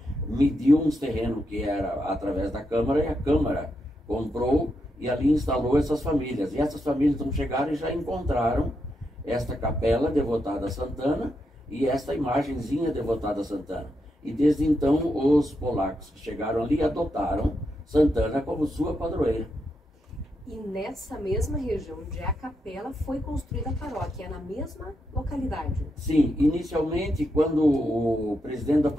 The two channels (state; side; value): normal; both; correlation 0.83